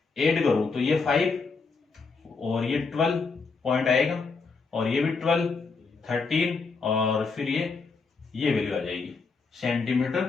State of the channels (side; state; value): right; quieter; 4.5 dB